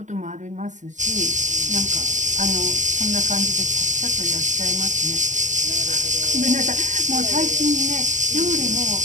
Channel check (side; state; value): left; late; 0.36 ms